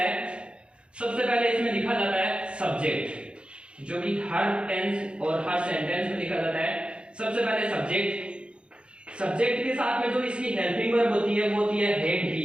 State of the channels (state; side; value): late; left; 0.056 ms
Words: सबसे पहले इसमें लिखा जाता है सब्जेक्ट, जो कि हर टेंस और हर सेंटेंस में लिखा जाता है। सबसे पहले सब्जेक्ट, सब्जेक्ट के साथ में जो इसकी हेल्पिंग वर्ब होती है वो होती है हैड